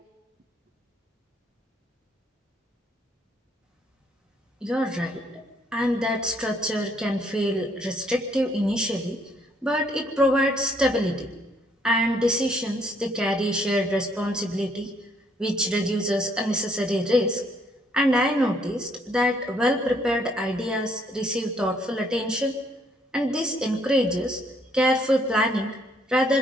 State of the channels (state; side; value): normal; both; correlation 0.67